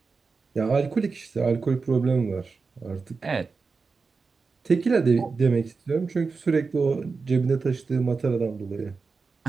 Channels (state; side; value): quieter; left; 4.6 dB